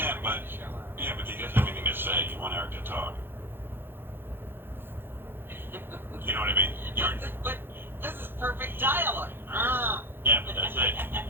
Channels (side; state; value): left; late; 0.10 ms